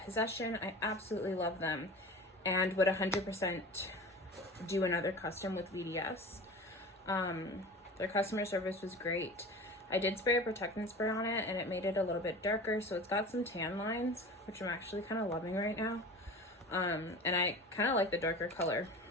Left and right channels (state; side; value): normal; both; correlation 0.36